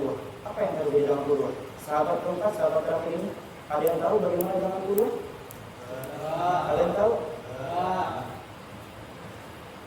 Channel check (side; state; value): both; identical; correlation 1.00